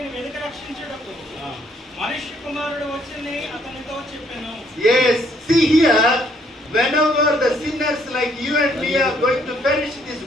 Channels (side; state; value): both; normal; correlation 0.67